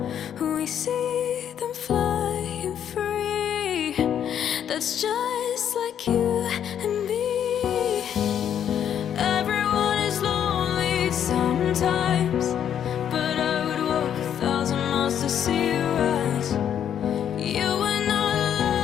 We see them flying free. That's just like you and me. Everyone is lonely sometimes, but I would walk 1,000 miles to see you rise. You are not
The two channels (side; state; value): right; quieter; 9.3 dB